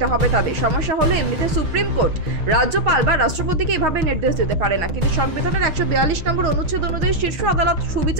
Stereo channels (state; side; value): late; left; 6.3 ms